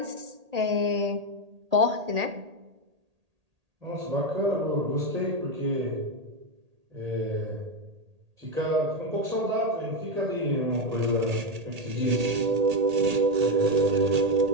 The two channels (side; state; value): left; late; 1.8 ms